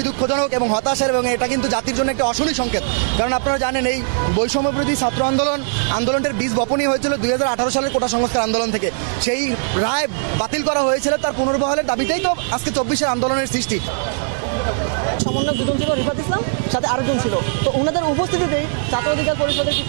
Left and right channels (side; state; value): left; silent; digital silence